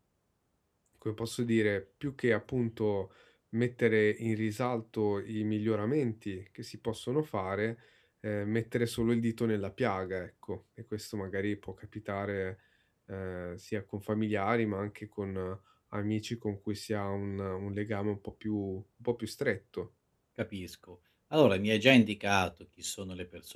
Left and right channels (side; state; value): both; identical; correlation 1.00